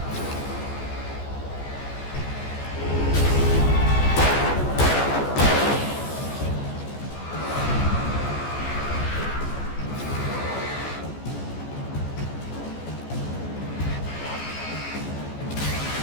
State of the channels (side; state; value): right; late; 14 ms